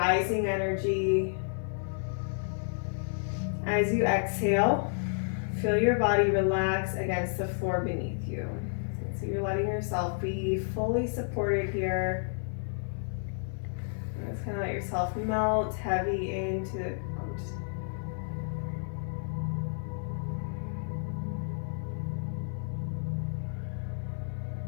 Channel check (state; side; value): silent; right; digital silence